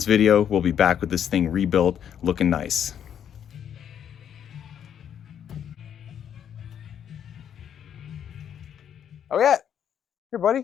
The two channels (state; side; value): quieter; right; 9.0 dB